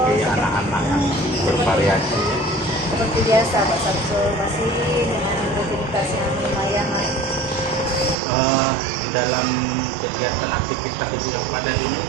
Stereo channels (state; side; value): drops out; left; at 8.2 s